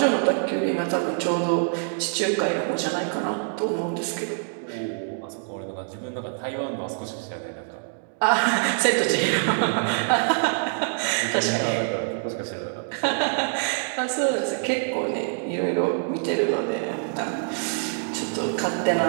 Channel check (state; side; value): silent; left; digital silence